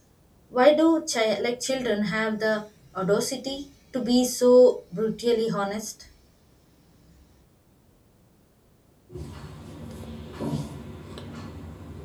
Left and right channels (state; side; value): identical; both; correlation 1.00